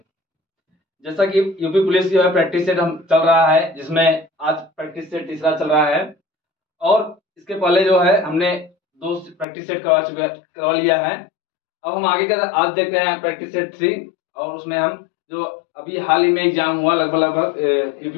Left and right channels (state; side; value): drops out; right; at 9.5 s